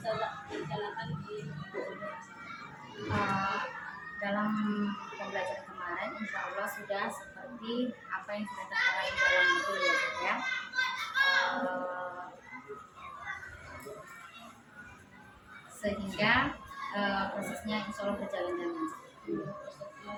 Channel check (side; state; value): both; identical; correlation 1.00